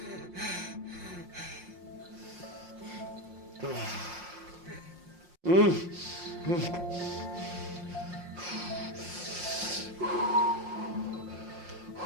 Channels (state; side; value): late; left; 5.6 ms